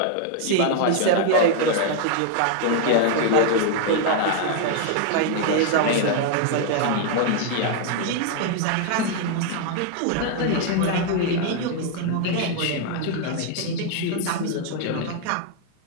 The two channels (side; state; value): both; different; correlation 0.00